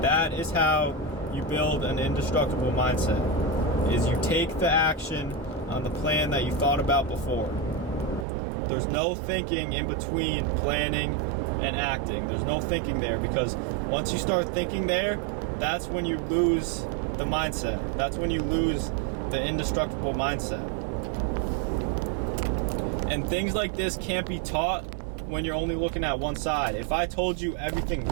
That is how you build an indestructible mindset. Is you take the action on the plan that you thought about before. There's no thinking in between planning and acting. There's no thinking there, because once you start thinking there, that's when you lose the mindset. That's when you lose the indestructible mindset. And things like this can't be taught when you're only looking at one side. If I told you everything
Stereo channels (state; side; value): drops out; left; at 8.2 s